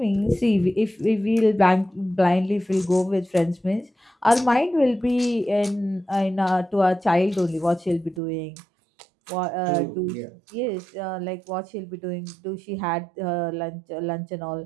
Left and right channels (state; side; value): drops out; left; at 8.2 s